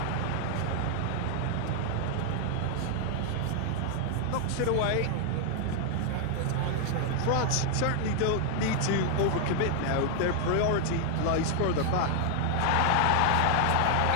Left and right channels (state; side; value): different; both; correlation 0.00